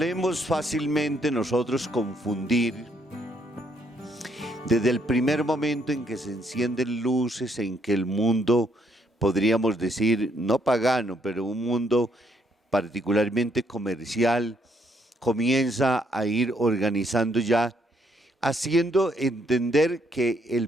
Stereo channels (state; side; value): normal; both; correlation 0.71